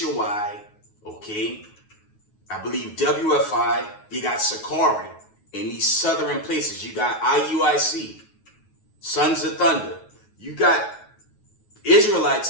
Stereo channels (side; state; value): right; late; 9.4 ms